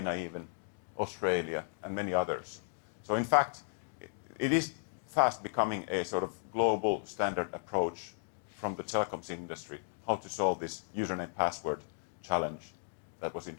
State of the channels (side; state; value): right; silent; digital silence